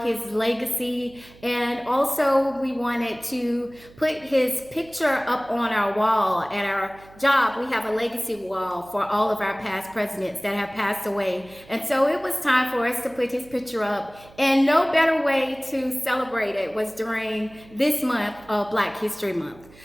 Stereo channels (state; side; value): noise; right; hum, 24 dB below the sound